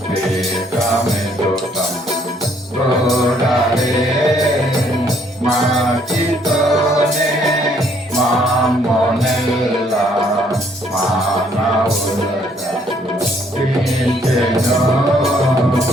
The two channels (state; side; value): normal; both; correlation 0.66